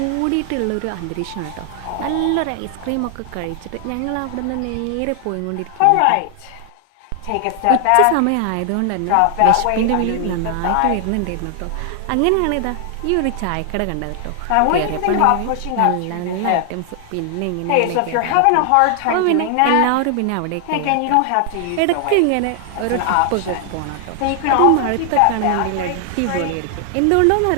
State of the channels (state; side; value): different; both; correlation 0.00